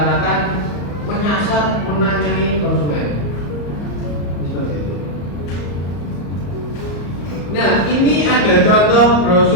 menyasar, menanyai konsumen. Seperti itu. Nah, ini ada contoh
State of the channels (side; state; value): right; late; 34 ms